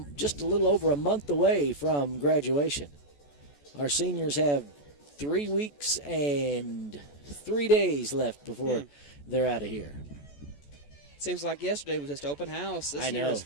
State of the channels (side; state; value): right; late; 14 ms